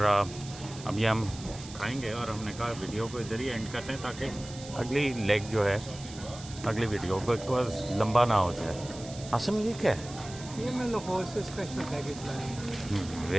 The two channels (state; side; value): noise; right; hiss, 15 dB below the sound